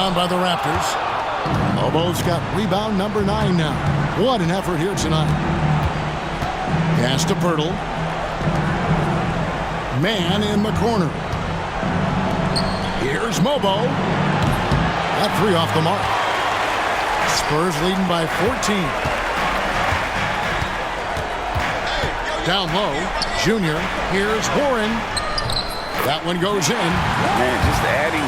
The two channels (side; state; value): both; identical; correlation 1.00